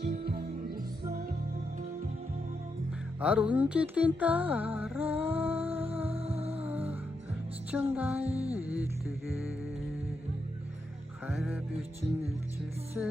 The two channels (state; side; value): normal; both; correlation 0.83